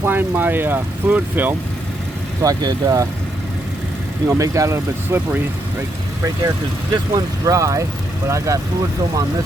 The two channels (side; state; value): both; normal; correlation 0.78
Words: my fluid film so I could, make that a little bit slippery right there, because this one's dry, but I got fluid film on this